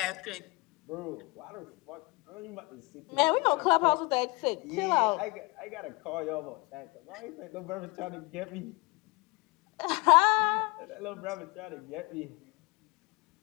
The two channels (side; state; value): right; quieter; 26.0 dB